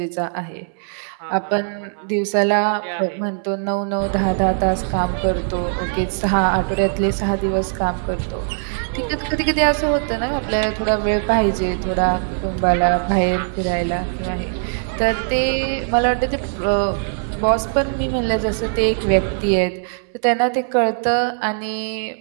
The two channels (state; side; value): silent; left; 62 dB below the other